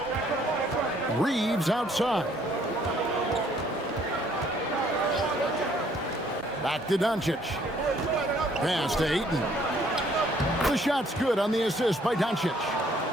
Reeves outside. Back to Doncic. Pass to Ayton. The shot's good on the assist by Doncic.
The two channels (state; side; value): normal; both; correlation 0.63